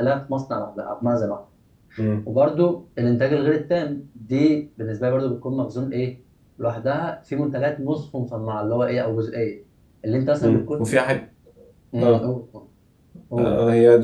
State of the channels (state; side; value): identical; both; correlation 1.00